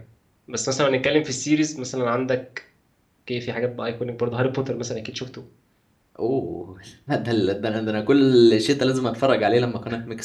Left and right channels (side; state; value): both; identical; correlation 1.00